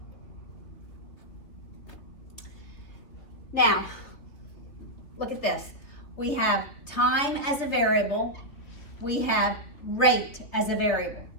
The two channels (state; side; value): late; right; 3.3 ms